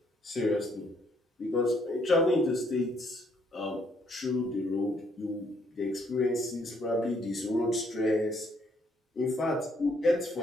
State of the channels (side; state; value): both; normal; correlation 0.69